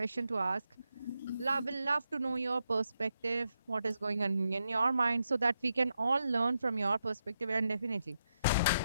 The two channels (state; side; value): inverted; both; correlation -0.84